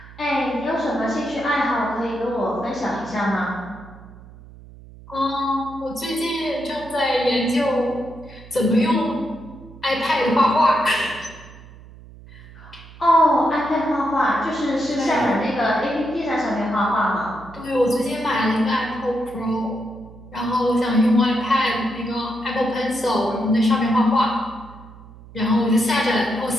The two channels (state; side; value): noise; right; hum, 19 dB below the sound